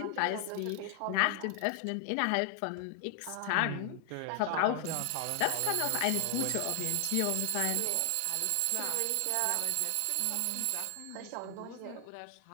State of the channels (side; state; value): both; different; correlation 0.00